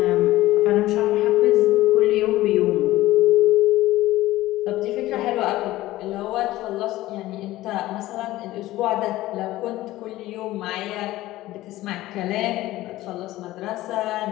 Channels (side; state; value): right; quieter; 16.5 dB